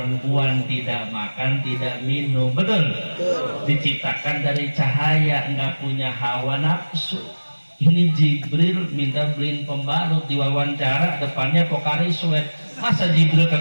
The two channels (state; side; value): inverted; both; correlation -1.00